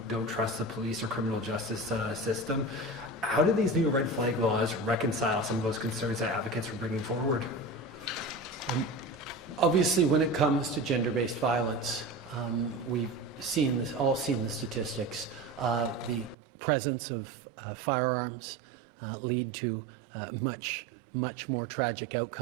don't trust the police or criminal justice system. How do these new red flag laws reconcile some of those concerns that advocates were bringing forward? Obviously, when it comes to gender-based violence, we've all seen the statistics. The presence of firearms lead to much more tragic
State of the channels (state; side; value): drops out; left; at 16.4 s